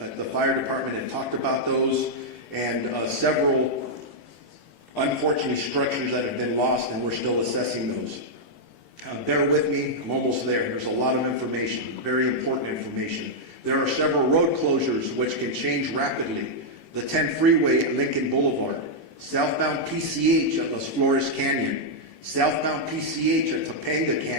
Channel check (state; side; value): late; right; 18 ms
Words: the fire department have talked about those, and several unfortunate structures that have been lost, and we're still assessing those. Bear with me, I'm almost there. There's a lot of information, very important information. There are several road closures which can change rapidly. The 10 freeway at Lincoln Boulevard, southbound PCH at Las Flores Canyon, southbound PCH at Topanga